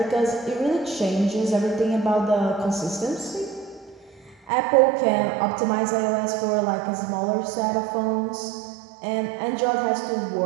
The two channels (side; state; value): left; drops out; at 4.5 s